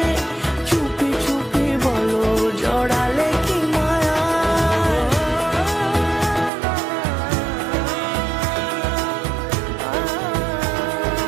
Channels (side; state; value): left; drops out; at 6.5 s